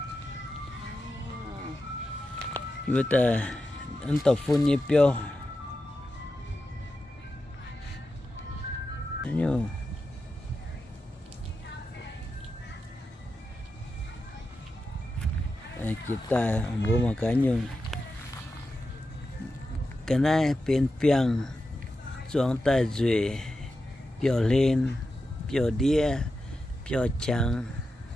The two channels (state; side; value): normal; both; correlation 0.90